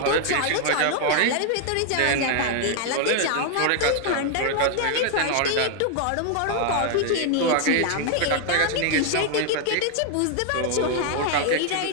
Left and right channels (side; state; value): both; different; correlation 0.00